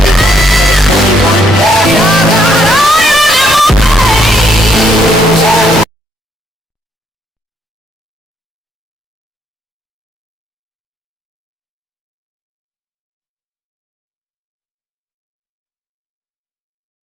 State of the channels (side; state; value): both; normal; correlation 0.71